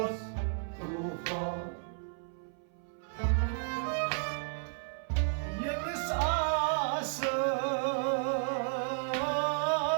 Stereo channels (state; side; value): silent; left; 56 dB below the other